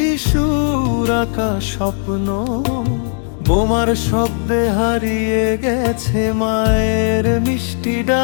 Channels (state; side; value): silent; right; 68 dB below the other